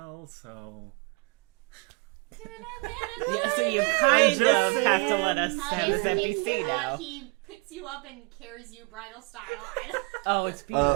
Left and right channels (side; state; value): left; quieter; 29.8 dB